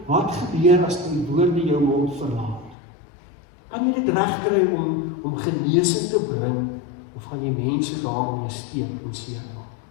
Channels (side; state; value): right; drops out; at 2.8 s